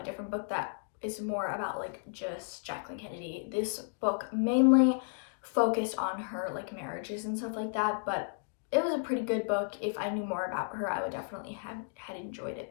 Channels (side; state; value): right; silent; digital silence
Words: different book that is more about like just Jacqueline Kennedy. This book mainly focused on her like marriages and stuff like that, but it was a pretty good book. If I knew more about her, I would definitely have had enjoyed